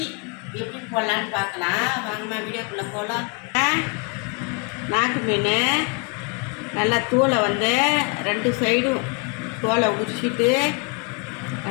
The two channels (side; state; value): right; quieter; 33.3 dB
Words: எப்படி போடலான்னு பார்க்கலாம். வாங்கம்மா வீடியோக்குள்ளே போகலாம். நாக்கு மீன் நல்லா தூளை ரெண்டு சைடும் தோலை உரிச்சிட்டு